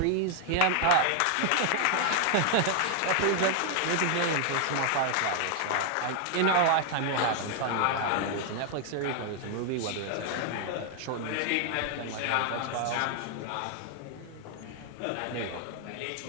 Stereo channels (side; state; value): both; different; correlation 0.00